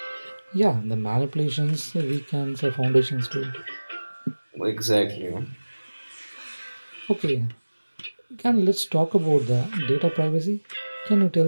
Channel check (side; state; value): both; inverted; correlation -1.00